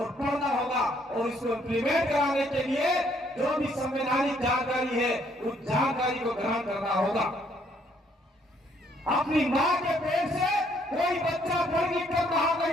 पढ़ना होगा। और इसको इम्प्लीमेंट कराने के लिए जो भी संवैधानिक जानकारी है उस जानकारी को ग्रहण करना होगा। अपनी मां के पेट से कोई बच्चा पढ़ लिख कर बाहर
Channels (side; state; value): both; normal; correlation 0.67